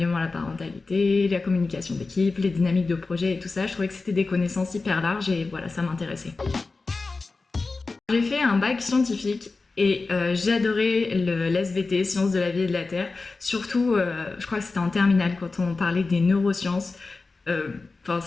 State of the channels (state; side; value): quieter; right; 3.8 dB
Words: à la parentalité, la communication d'équipe, les dynamiques de projet et tout ça. Je trouvais que c'était des connaissances hyper larges et voilà, ça m'intéressait. J'ai fait un bac scientifique et j'ai adoré l'SVT, Sciences de la vie et de la Terre. Surtout, je crois que c'était en terminale quand on parlait des neurosciences.